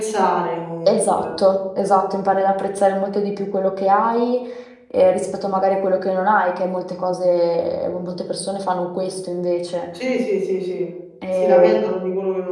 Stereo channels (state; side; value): identical; both; correlation 1.00